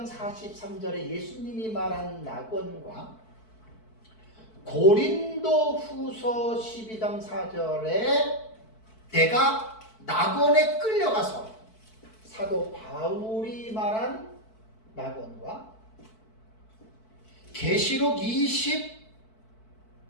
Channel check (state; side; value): late; right; 4.6 ms